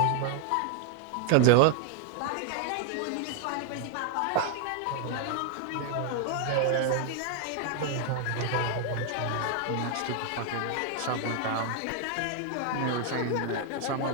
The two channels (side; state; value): both; different; correlation 0.00